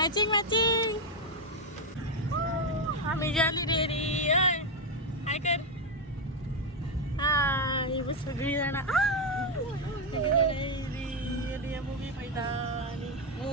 आमी जाली रेडी. हय हाय कर. हाय सगळीं जाणां मुवी पळयता आनी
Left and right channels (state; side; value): normal; both; correlation 0.05